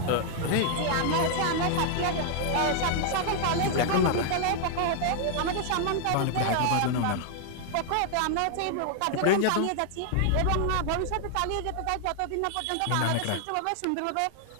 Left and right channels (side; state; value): both; different; correlation 0.00